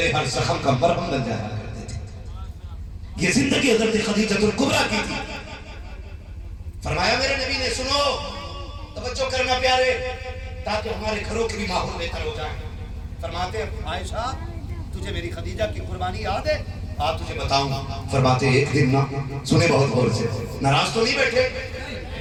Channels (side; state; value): both; identical; correlation 1.00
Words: ہر زخم کا مرہم بن جایا کرتے تھے۔ یہ زندگی حضرت خدیجہ الکبریٰ کی تھی۔ فرمایا میرے نبی نے سنو، توجہ کرنا پیارے، تاکہ ہمارے گھروں کے بھی ماحول بہتر ہو جائے۔ فرماتے عائشہ تجھے میری خدیجہ کی قربانی یاد ہے؟ آپ تجھے بتاؤں۔ فرماتے ایک دن نا، سنے بہت غور سے، ناراض تو نہیں بیٹھے؟